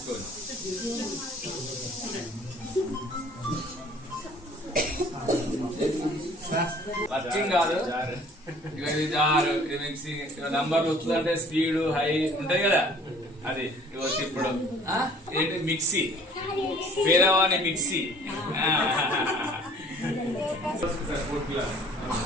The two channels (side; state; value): both; normal; correlation 0.53